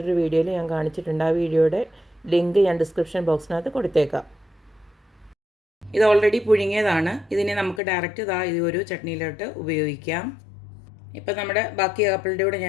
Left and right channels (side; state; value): right; drops out; at 7.8 s